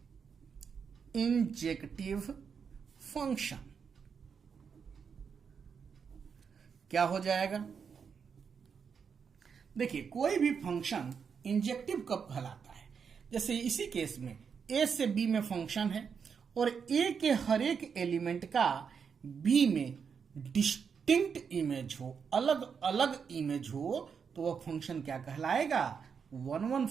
इंजेक्टिव फंक्शन क्या हो जाएगा। देखिए, कोई भी फंक्शन इंजेक्टिव कब कहलाता है, जैसे इसी केस में ए से बी में फंक्शन है और ए के हर एक एलिमेंट का बी में डिस्टिंक्ट इमेज हो, अलग अलग इमेज हो, तो वह फंक्शन क्या कहलाएगा, 1 1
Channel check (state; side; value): quieter; left; 6.4 dB